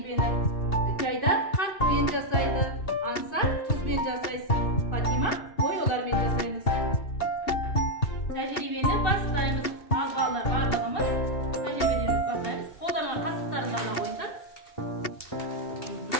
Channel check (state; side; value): late; right; 2.7 ms